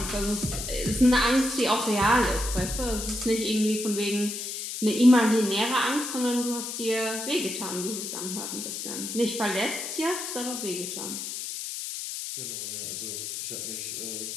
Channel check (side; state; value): left; noise; hiss, 6 dB below the sound